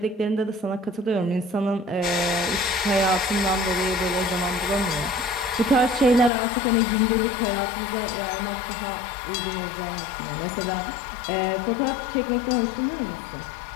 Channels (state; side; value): drops out; right; at 6.3 s